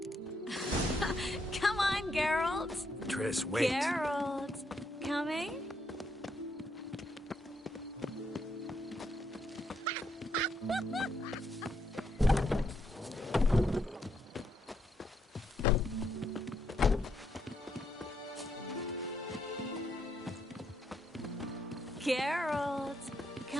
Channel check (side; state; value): both; normal; correlation 0.76